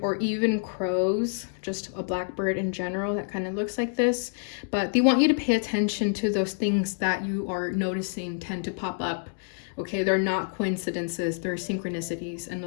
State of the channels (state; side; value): silent; right; digital silence